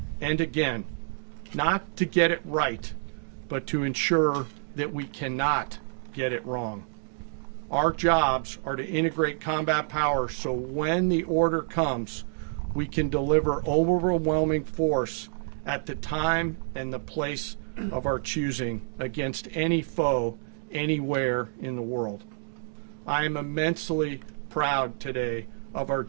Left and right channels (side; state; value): left; silent; digital silence